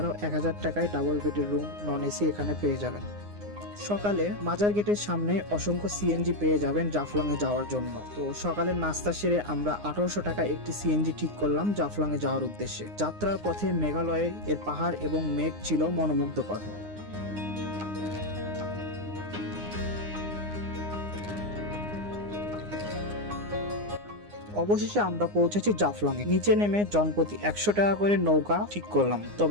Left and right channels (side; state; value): left; late; 9.7 ms